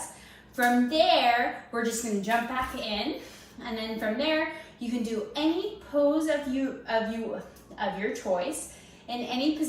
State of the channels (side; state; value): both; identical; correlation 1.00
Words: From there, we're just gonna jump back in And then from there, you can do any pose of your choice in any